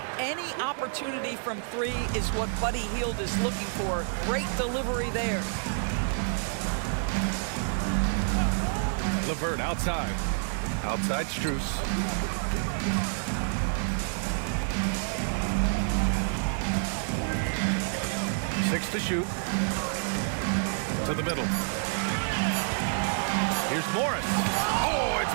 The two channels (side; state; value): left; silent; 59 dB below the other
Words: Any opportunity from three is what Buddy Hield is looking for. Great delivery there. LeVert outside. Outside Strus. Six to shoot. To the middle. Here's Morris. Oh, it's